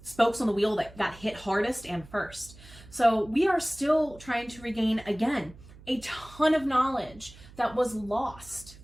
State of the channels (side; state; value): right; noise; hum, 20 dB below the sound